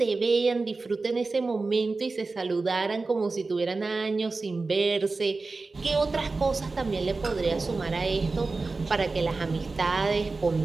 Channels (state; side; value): quieter; left; 3.8 dB